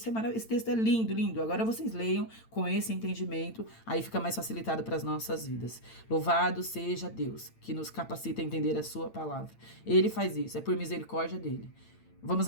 é maravilhoso. Esse texto é lindo, lindo. Agora vocês leiam com esse entendimento, aí fica mais facilitado para as nossas vidas. Louvado seja Deus, que nos capacita a entender a sua palavra. Ele faz isso, é por misericórdia dele. Vamos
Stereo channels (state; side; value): late; right; 8.9 ms